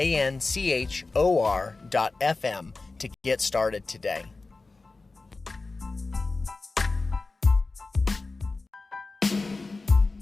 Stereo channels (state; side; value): quieter; right; 3.6 dB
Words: to get started today.